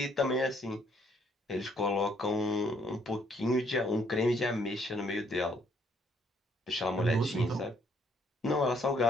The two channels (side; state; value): both; normal; correlation 0.67